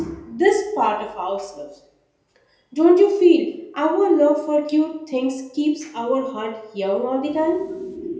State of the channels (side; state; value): both; identical; correlation 1.00